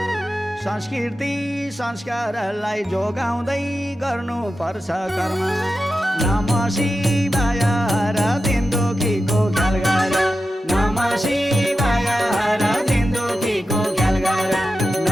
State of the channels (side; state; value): both; normal; correlation 0.91